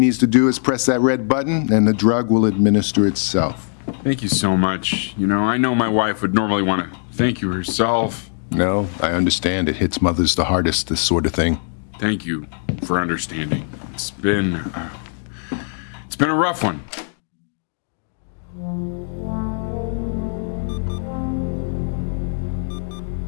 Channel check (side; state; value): right; silent; 62 dB below the other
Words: to do is press that red button and the drug will administer itself. Thank you so much. You know, I know my wife would normally want to thank you herself. No, I understand. It hits mothers the hardest, this sort of thing. Thank you for understanding. It's been a rough one.